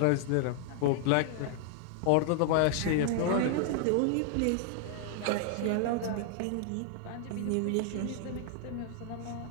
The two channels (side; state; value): both; different; correlation -0.01